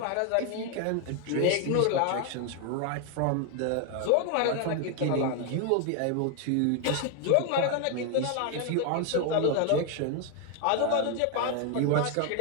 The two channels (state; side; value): different; both; correlation 0.01